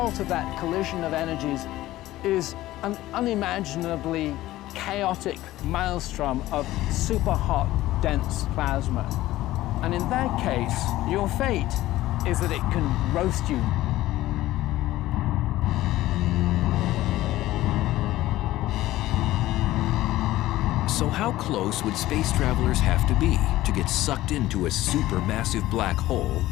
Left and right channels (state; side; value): quieter; right; 15.9 dB